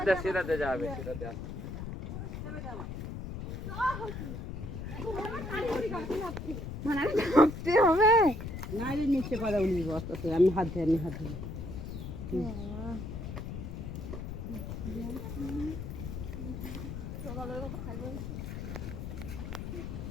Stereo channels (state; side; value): noise; left; rumble, 6 dB below the sound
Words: সেরাতে যাবে সেরাতে মানে হবে না নিচে পারে উনি বস্তাতে আমি হাত ধরে